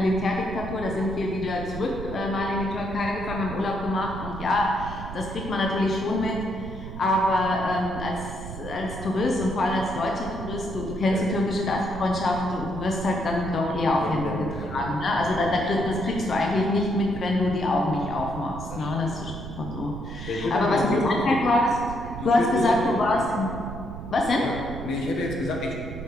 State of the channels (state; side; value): noise; right; rumble, 10 dB below the sound